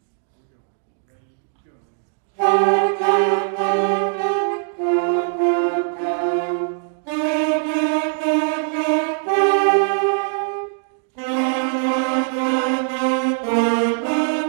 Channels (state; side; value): silent; left; digital silence